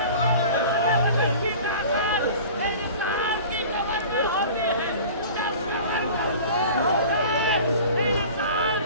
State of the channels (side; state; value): both; inverted; correlation -0.41